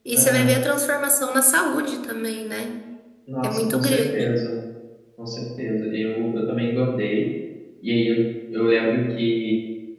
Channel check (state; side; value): identical; both; correlation 1.00